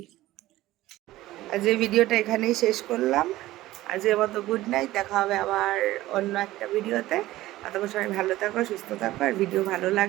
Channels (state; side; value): quieter; left; 16.4 dB